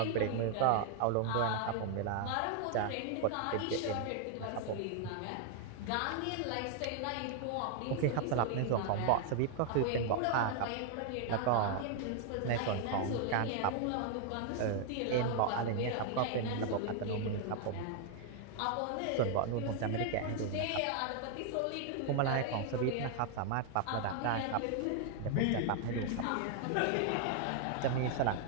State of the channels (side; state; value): both; different; correlation 0.00